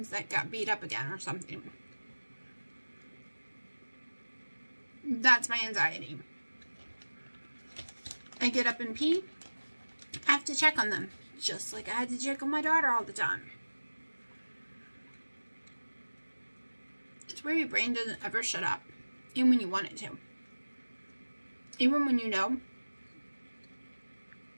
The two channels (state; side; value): inverted; both; correlation -1.00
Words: that got beat up again or something. That's my anxiety. I get up and pee. I have to check on them. Just like I had to check on my daughter all the time. It's where your brain doesn't ever shut up. Even when you want it to. Even when you know